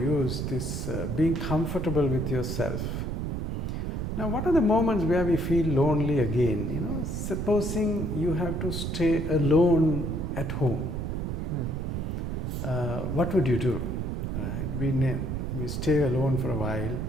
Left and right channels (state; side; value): noise; right; rumble, 2 dB below the sound